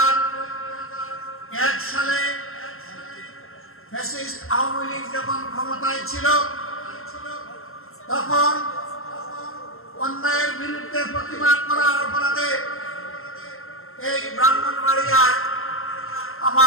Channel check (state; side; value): late; right; 0.61 ms